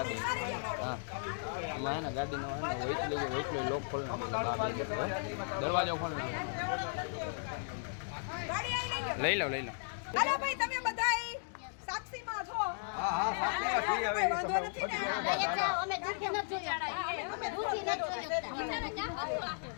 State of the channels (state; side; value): silent; right; digital silence